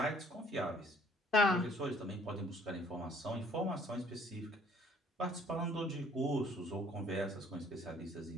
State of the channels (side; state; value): both; normal; correlation 0.58